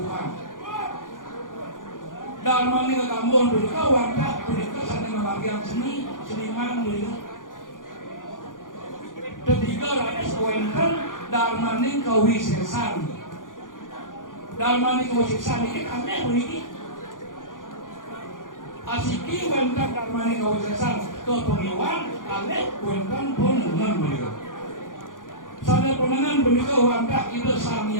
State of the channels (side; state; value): right; late; 0.89 ms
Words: dharma ini ke gambukan punika warta punika sana membagian seniman punika Ketiga rakyat sewenten darmaning kawisesan. Darmaning kawisesan ini kami begini. Asiki wenten darmaning kawisesan ke pengiwan, kami wenten penengan beliau. Sana penengan beliau wanta itu